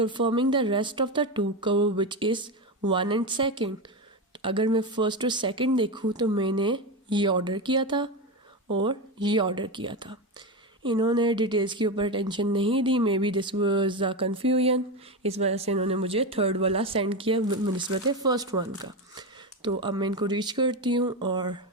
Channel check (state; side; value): normal; both; correlation 0.16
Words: the rest of the 2 cover which is 1 and 2। अगर मैं फर्स्ट और सेकंड देखूँ तो मैंने ये ऑर्डर किया था और ये ऑर्डर किया था। इन्होंने डिटेल्स के ऊपर टेंशन नहीं दी, maybe this was a confusion, इस वजह से इन्होंने मुझे थर्ड वाला सेंड किया निस्बत फर्स्ट वन का। तो अब मैं इनको रीच करती हूँ और